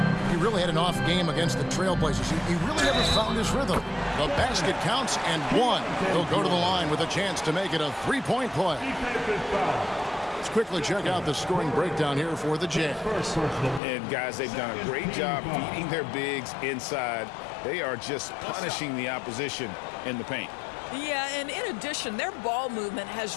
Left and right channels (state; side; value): drops out; right; at 13.8 s